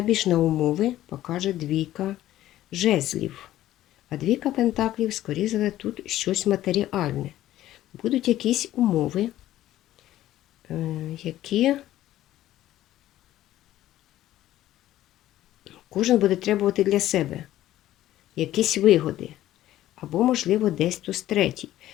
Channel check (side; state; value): right; quieter; 13.9 dB